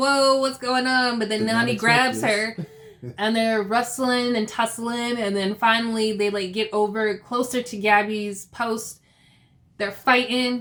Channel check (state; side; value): identical; both; correlation 1.00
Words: what's going on? But then Nani grabs her, and they're wrestling and tussling. And then finally, they, like, get over closer to Gabby's post. They're